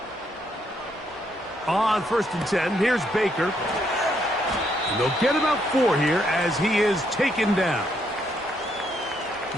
On 1st and 10, here's Baker. And they'll get about 4 here as he is taken down.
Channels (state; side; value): normal; both; correlation 0.74